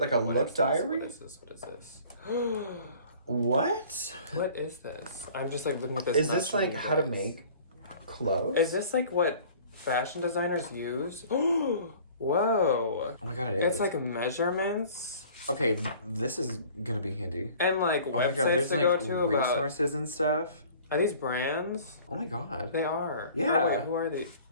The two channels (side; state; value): both; inverted; correlation -0.49